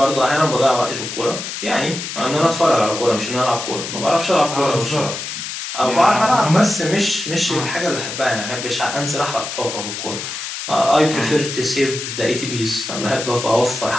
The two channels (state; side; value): noise; left; hiss, 7 dB below the sound